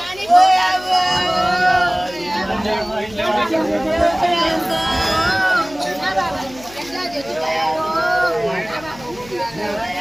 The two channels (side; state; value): left; noise; hum, 20 dB below the sound